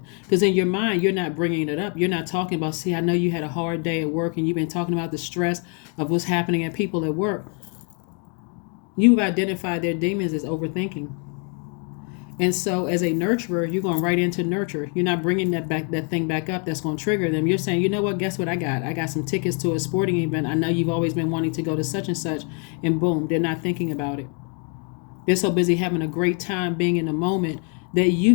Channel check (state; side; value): quieter; right; 38.8 dB